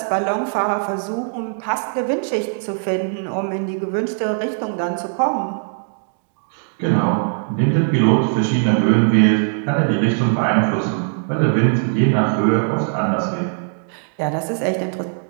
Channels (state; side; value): silent; left; digital silence